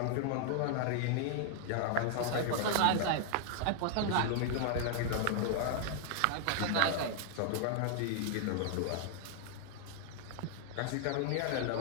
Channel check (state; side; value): different; both; correlation 0.00